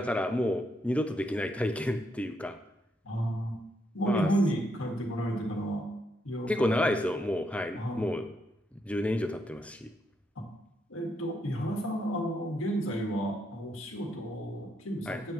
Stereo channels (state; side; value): normal; both; correlation 0.78